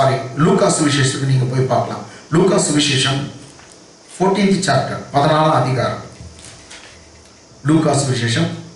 லூக்கா சுவிசேஷத்துக்கு நீங்க போய் பார்க்கலாம். லூக்கா சுவிசேஷம் 14th chapter 14ஆம் அதிகாரம். லூக்கா சுவிசேஷம்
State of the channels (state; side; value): identical; both; correlation 1.00